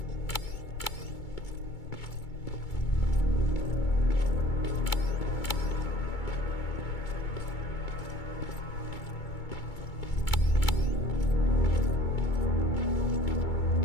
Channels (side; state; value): right; late; 2.2 ms